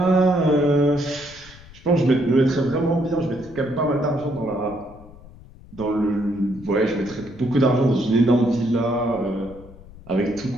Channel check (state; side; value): noise; left; rumble, 20 dB below the sound